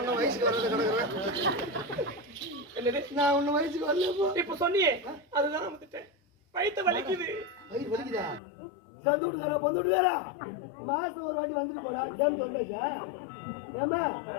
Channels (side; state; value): right; drops out; at 8.4 s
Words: வயசுக்கு வர்றது கிடக்குறேன் என்னது நான் ஒன்னும் வயசுக்கு வரல இப்ப சொன்னியே அதுதான் வந்துட்டேன் வயிற்று வலிக்குது வயிறு வலிக்குதா சந்து விட்டுக்காரா பொந்து விட்டுக்காரா மாசம் ஒரு வாட்டி வந்துட்டு போடா டேம் தொண்டாச்சா ஏமா